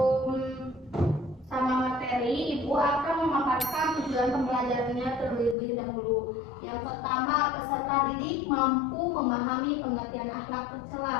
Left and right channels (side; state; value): right; drops out; at 5.6 s